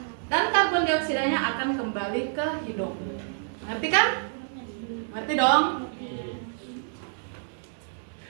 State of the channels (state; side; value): silent; left; digital silence